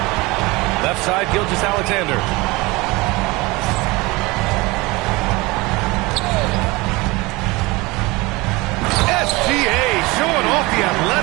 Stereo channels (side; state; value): left; quieter; 23.1 dB